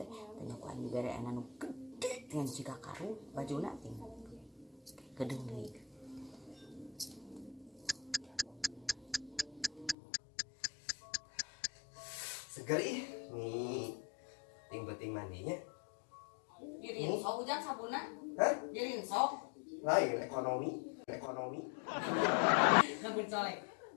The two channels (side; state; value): right; drops out; at 10.0 s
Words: Tanya ku anjing bere anu gede dengan siga karu bajuna teh gedeng deui. Seger ih nih ting-ting mandinya. Dirin sok hujan sabuna. Hah? Dirin sok. Lain ekonomi. Nabun colek.